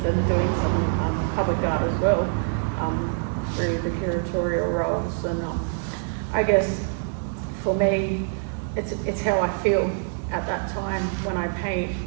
and doing some public art as well through the curatorial roles. And I guess for me, it's how I feel at that time when I paint,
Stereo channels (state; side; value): silent; left; 62 dB below the other